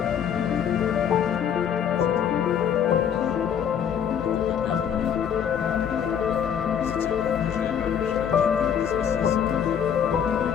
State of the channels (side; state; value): right; quieter; 8.4 dB